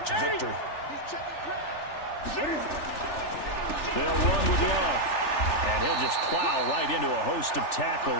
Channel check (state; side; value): late; right; 3.4 ms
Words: a victory. They'll run with Love, and he'll just plow right into a host of